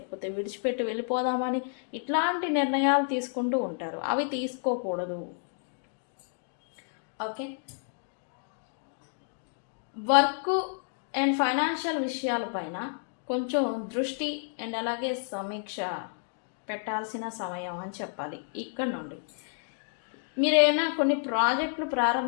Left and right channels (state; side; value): silent; right; digital silence